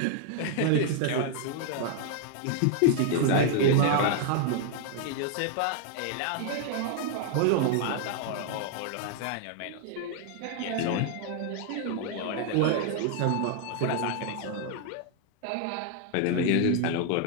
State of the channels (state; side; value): different; both; correlation 0.00